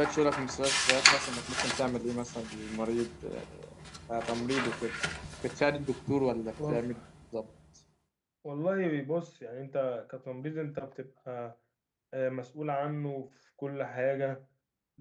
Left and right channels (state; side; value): identical; both; correlation 1.00